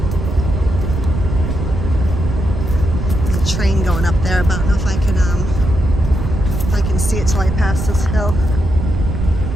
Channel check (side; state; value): right; noise; rumble, 3 dB below the sound